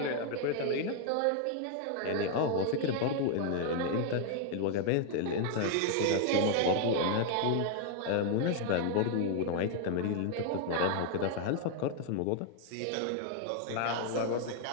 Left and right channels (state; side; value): different; both; correlation 0.00